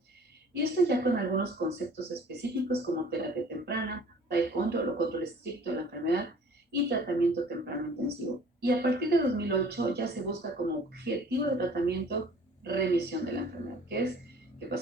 Y esto ya con algunos conceptos específicos como terapia temprana, tight control o control estricto de la enfermedad y tratamiento temprano intensivo. Y a partir de 2008 ya se busca como objetivo de tratamiento remisión de la enfermedad, que es que el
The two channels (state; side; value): normal; both; correlation 0.50